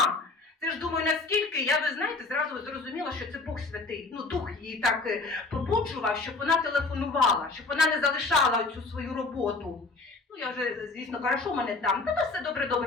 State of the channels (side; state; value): right; quieter; 3.7 dB